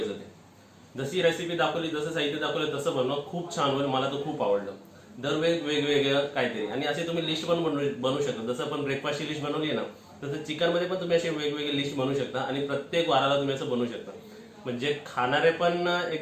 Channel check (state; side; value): identical; both; correlation 1.00